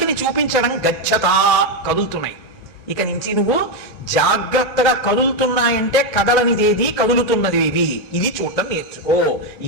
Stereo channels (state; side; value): normal; both; correlation 0.06